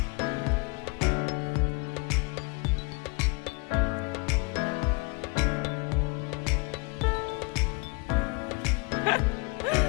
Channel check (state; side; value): quieter; right; 28.7 dB